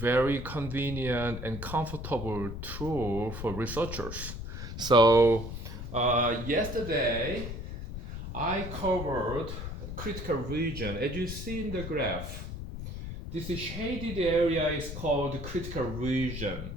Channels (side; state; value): left; noise; rumble, 7 dB below the sound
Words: convenient and comfortable tool for researchers. So yesterday I covered critical region. As you see in the graph, this shaded area is called critical region.